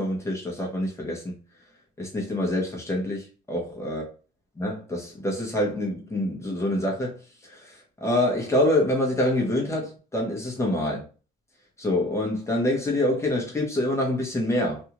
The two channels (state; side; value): normal; both; correlation 0.47